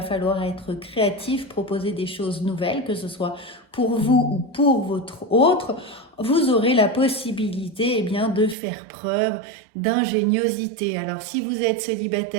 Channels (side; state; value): left; drops out; at 8.6 s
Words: falloir être créatif, proposer des choses nouvelles, que ce soit pour vous ou pour votre autre. Vous aurez la possibilité eh bien, de faire preuve d'ingéniosité. Alors, si vous êtes